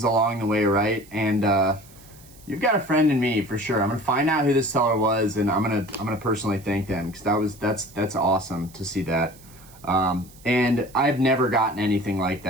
along the way, right? And you've got a friend in me for sure. I'm gonna find out who this seller was, and I'm gonna personally thank them, because that's awesome to see that. And I've never gotten anything like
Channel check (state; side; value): noise; right; hiss, 24 dB below the sound